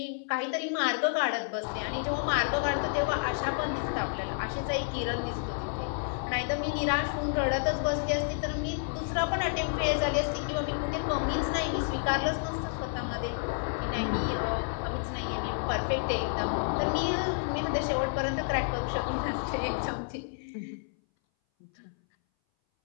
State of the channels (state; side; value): silent; right; 58 dB below the other